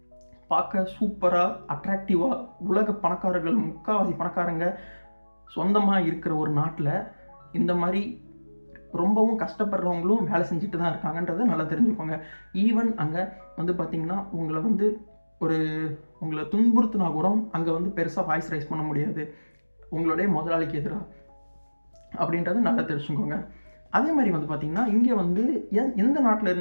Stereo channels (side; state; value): both; inverted; correlation -1.00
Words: பார்க்க சூப்பராக அட்ராக்டிவாக உலக பணக்காரர்கள், முக்கால்வாசி பணக்காரங்க சொந்தமாக இருக்கிற ஒரு நாட்டில் இந்த மாதிரி ரொம்பவும் கஷ்டப்படுறவங்களும் வேலை செஞ்சுட்டு தான் இருக்காங்கன்றதை நல்லா தெரிஞ்சுக்கோங்க. ஈவன் அங்கே வந்து பார்த்திங்கன்னா உங்களை துன்புறுத்தினா கூட அங்கே வந்து பெருசாக வாய்ஸ் ரைஸ் பண்ண முடியாது உங்களுடைய முதலாளிக்கு எதிராக, அப்படின்றத நல்லா தெரிஞ்சுக்கோங்க. அதே மாதிரி வந்து பார்த்திங்கன்னா இங்கே வந்து எந்த